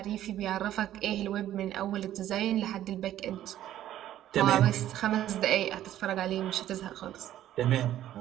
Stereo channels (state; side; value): quieter; left; 12.5 dB